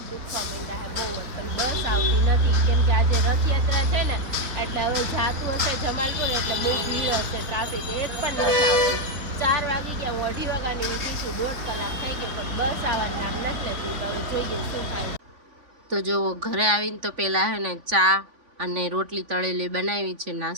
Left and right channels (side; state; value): left; late; 3.5 ms